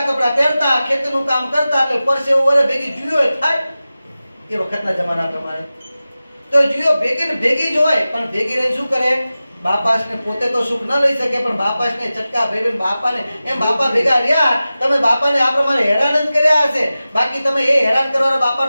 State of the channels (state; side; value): inverted; both; correlation -0.95